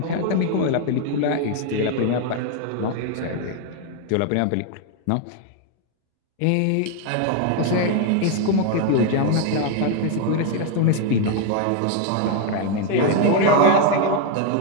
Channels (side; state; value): both; different; correlation 0.00